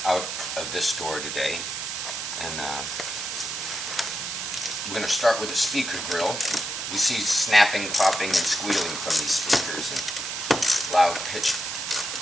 out of this door today, and we're going to start with the speaker grill. We see snapping, popping, and squealing from these speakers, and loud pitch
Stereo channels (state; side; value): noise; right; hiss, 5 dB below the sound